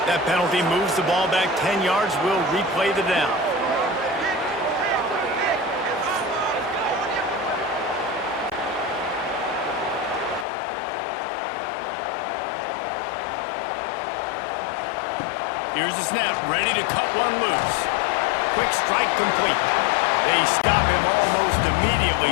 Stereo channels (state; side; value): drops out; right; at 10.5 s